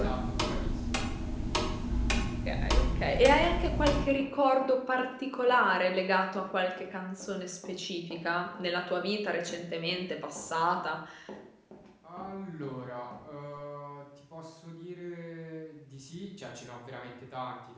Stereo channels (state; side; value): identical; both; correlation 1.00